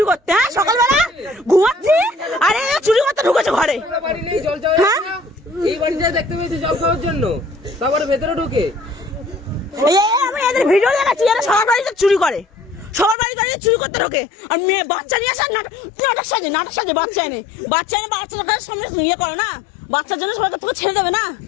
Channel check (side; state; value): right; drops out; at 13.2 s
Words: করতে। হ্যাঁ সকালবেলা ঘুমাচ্ছি আরে চুরি করতে ঢুকেছে ঘরে। হ্যাঁ এই বাড়িটা দেখতে পেয়েছি জল খাওয়ার জন্য, তারপরে ভেতরে ঢুকে আমি এদের ভিডিও দেখাচ্ছি, এরা সবার বাড়িতে চুরি করে, সবার বাড়িতে চুরি করতে ঢোকে। আর মেয়ে বাচ্চা নিয়ে আসা নাটক সাজে বাচ্চা এনে বাচ্চাদের সামনে ইয়ে করে না, বাচ্চার জন্য সবাইকে তোকে ছেড়ে দেবে না।